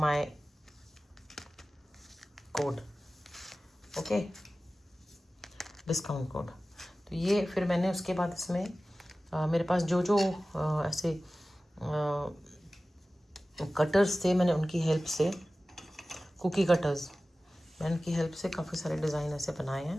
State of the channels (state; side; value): normal; both; correlation 0.96